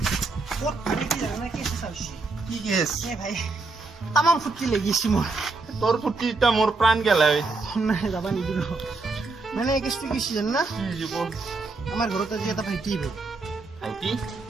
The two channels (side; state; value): left; quieter; 3.7 dB